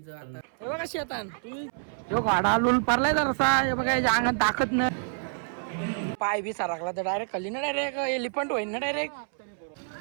आता हे बघा शेतान यो गाडा लुल पडलाय जरासा हे बघा याच्या अंगात ताकद नाही पाय बी सारखला तर डायरेक्ट खाली ना डायरेक्ट एलिफंट होईल ना डायरेक्ट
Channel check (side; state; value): left; silent; 60 dB below the other